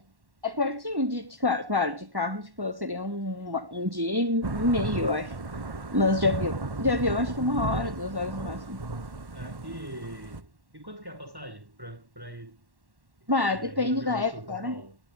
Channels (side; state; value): left; late; 1.1 ms